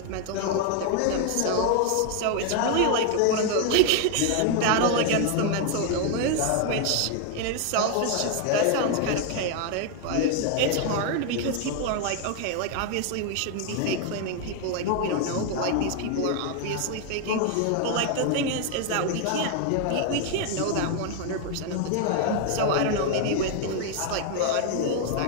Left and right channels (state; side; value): different; both; correlation 0.01